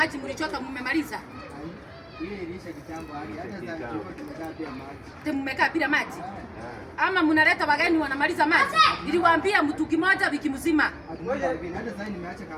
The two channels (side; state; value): both; identical; correlation 1.00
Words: mlichota mmemaliza? Ile ilisha kitambo hata sasa tumekaa pia maji. Mmekaa bila maji? Ama mnaleta wageni wanamaliza maji? Niliwaambia mtu kimoja wiki mzima. Hata sasa nimeacha